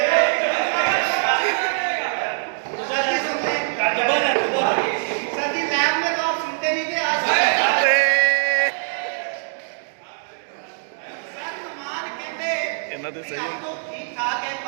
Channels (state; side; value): silent; left; digital silence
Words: ਇਹਨਾਂ ਦੇ ਸਹੀ ठीक ठाक है